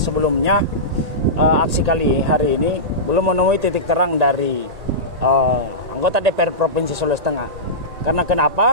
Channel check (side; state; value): left; late; 1.9 ms